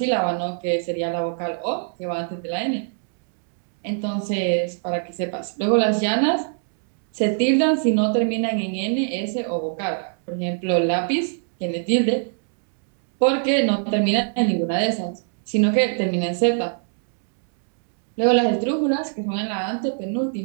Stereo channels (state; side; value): silent; left; 63 dB below the other